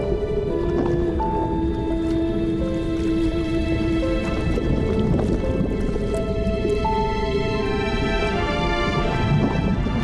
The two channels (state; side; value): identical; both; correlation 1.00